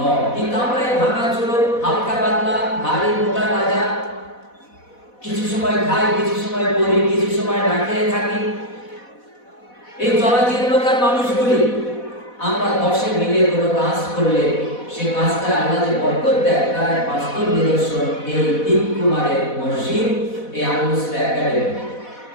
কিন্তু আমরা এই ভাঙাচুরো, হালকা পাতলা, ভারী মোটা তাজা, কিছু সময় খাই, কিছু সময় পড়ি, কিছু সময় না খেয়ে থাকি, এই জরাজীর্ণকার মানুষগুলি আমরা 10 মিলে কোনো কাজ করলে সেই কাজটা আল্লাহ যে বরকত দেয়, তার এক বাস্তব নিদর্শন এই তিনকুমারের মসজিদ, এই আল মুসলিহ একাডেমি।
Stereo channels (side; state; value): right; late; 4.1 ms